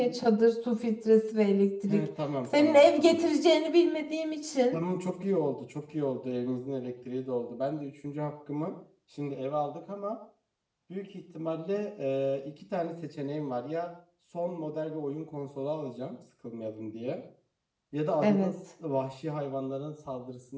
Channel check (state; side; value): identical; both; correlation 1.00